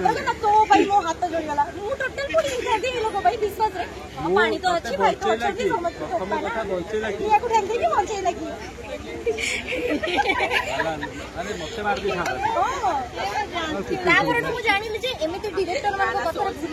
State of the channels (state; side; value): identical; both; correlation 1.00